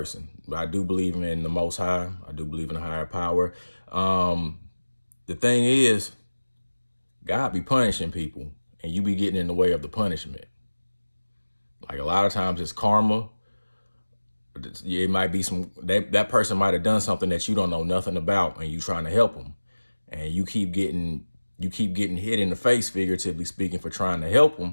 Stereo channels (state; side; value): inverted; both; correlation -1.00